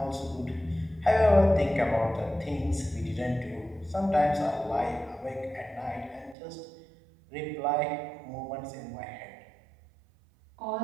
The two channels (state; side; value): drops out; left; at 6.4 s